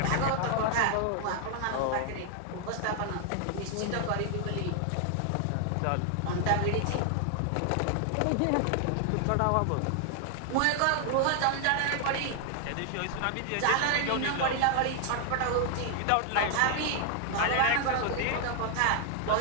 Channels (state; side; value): different; both; correlation 0.00